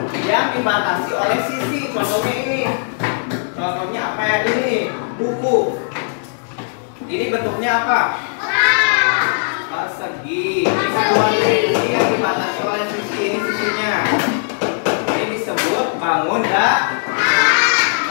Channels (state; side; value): silent; right; 67 dB below the other